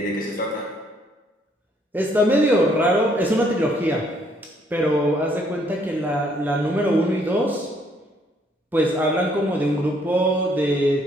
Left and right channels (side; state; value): both; normal; correlation 0.67